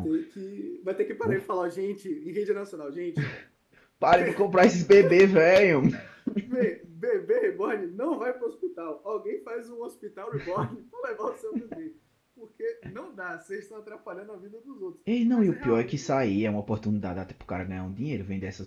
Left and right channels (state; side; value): identical; both; correlation 1.00